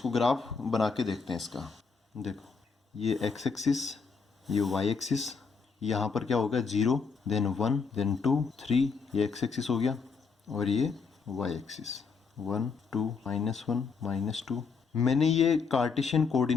ग्राफ बना के देखते हैं इसका। देखो, ये एक्स एक्सिस, ये वाई एक्सिस, यहाँ पर क्या होगा, 0, देन 1, देन 2, 3, ये एक्स एक्सिस हो गया, और ये वाई एक्सिस, 1, 2, -1, -2। मैंने ये कार्टेशियन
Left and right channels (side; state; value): right; quieter; 5.2 dB